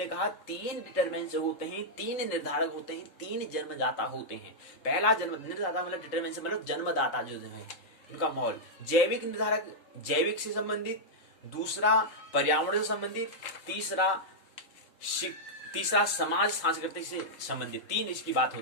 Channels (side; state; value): right; late; 3.7 ms